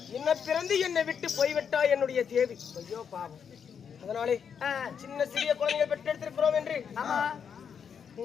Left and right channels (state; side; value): quieter; right; 7.2 dB